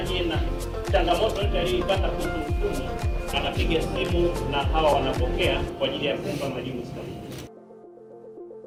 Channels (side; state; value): both; identical; correlation 1.00